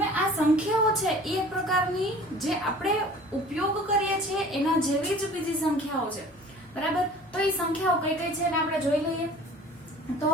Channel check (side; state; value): both; normal; correlation 0.46